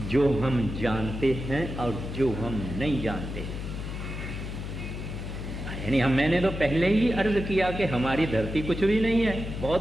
जो हम जानते हैं और जो हम नहीं जानते। यानी मैंने तो पहले ही अर्ज किया कि हमारी धरती कुछ भी नहीं है,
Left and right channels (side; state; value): left; noise; hum, 6 dB below the sound